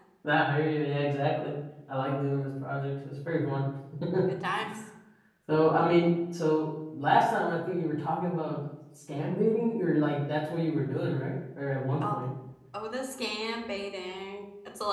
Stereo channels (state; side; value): identical; both; correlation 1.00